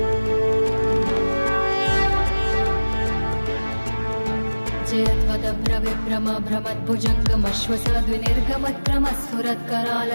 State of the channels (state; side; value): inverted; both; correlation -1.00